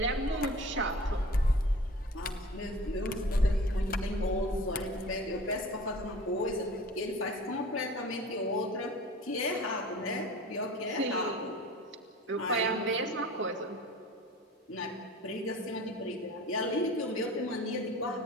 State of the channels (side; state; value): both; normal; correlation 0.41